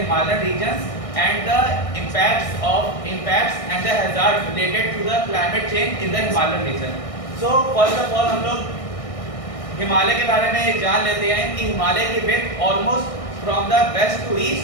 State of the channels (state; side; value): late; right; 1.6 ms